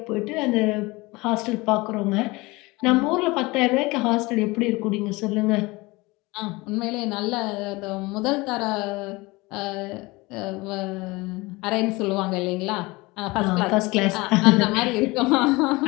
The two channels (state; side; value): quieter; right; 22.9 dB